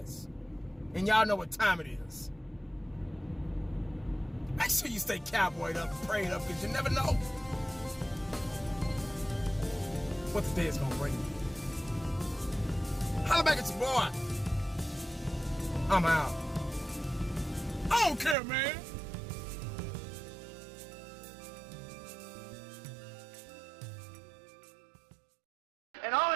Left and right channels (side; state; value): left; drops out; at 18.4 s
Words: And y'all know what time it is. Make sure you stay cowboyed up and prayed up because you never know what the day is gonna bring. Holla back at your boy. I'm out. I don't care, man. And the